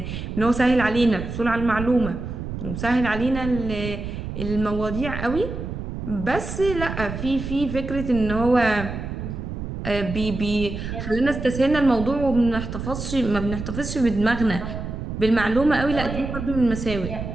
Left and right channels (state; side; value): noise; right; rumble, 6 dB below the sound